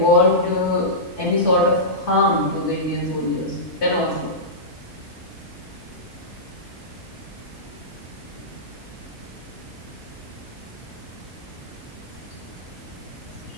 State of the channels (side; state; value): both; normal; correlation -0.16